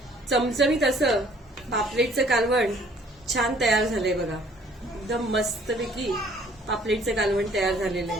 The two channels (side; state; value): both; normal; correlation 0.58